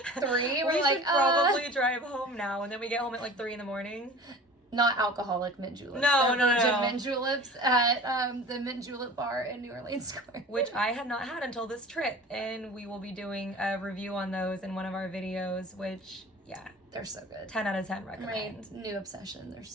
3. We should probably drive home now. And then we get home at like 3 in the morning. Not alcoholic mint juleps. No. Mint juleps at the Mint Julep Bar in New Orleans Square. Which I had not had until this trip. And we will be doing a review on those in one of our videos, which, yeah. They're so good. 10 out of 10 recommend. My new obsession. They're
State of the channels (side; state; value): both; normal; correlation 0.41